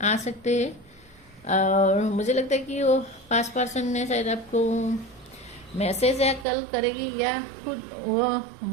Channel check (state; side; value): drops out; left; at 6.5 s